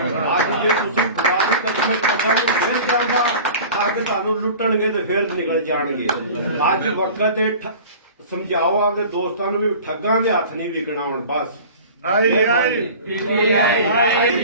ਜੇ ਤੁਸੀਂ ਖੁਦਾ ਦੀ ਕਸਮ ਪਤਾ ਨਹੀਂ ਫਿਰ ਜਾਂਦਾ ਠੱਗ ਤੁਹਾਨੂੰ ਲੁੱਟਣਗੇ ਤੇ ਫਿਰ ਨਿਕਲ ਜਾਣਗੇ। ਅੱਜ ਵਕਤ ਇਹ ਸਮਝਾਓ ਆਪਦੇ ਦੋਸਤਾਂ ਨੂੰ ਵੀ ਠੱਗਾਂ ਦੇ ਹੱਥ ਨਹੀਂ ਵਿਕਣਾ ਹੁਣ ਬਸ।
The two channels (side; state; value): both; inverted; correlation -0.40